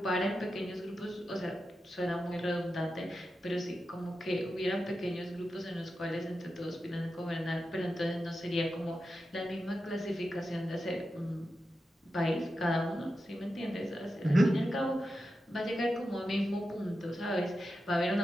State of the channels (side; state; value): both; normal; correlation 0.90